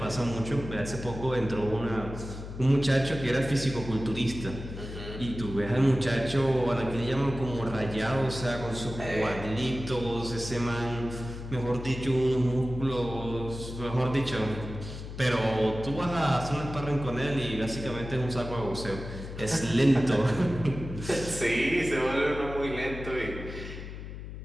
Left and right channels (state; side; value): noise; left; hum, 10 dB below the sound